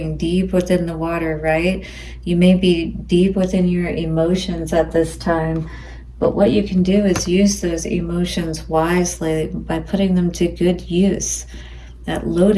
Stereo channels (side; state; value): both; identical; correlation 1.00